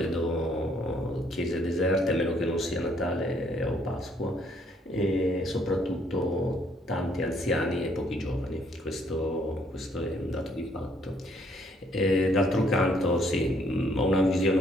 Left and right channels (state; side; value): normal; both; correlation 0.67